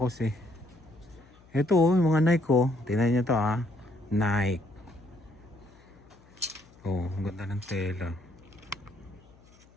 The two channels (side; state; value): left; noise; hum, 27 dB below the sound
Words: eh. Ito yung mga Nike ko. Tingnan nyo to ha. Nike. Oh, ang ganda ng tela.